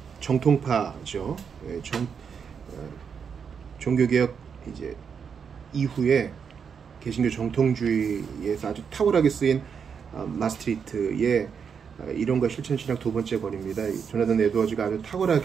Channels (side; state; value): left; quieter; 6.7 dB